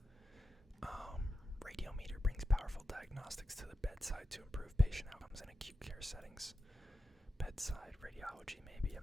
Radiometer brings powerful diagnostics to the bedside to improve patient outcomes in acute care settings. Bedside radiology, maybe, I'm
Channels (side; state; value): both; normal; correlation 0.91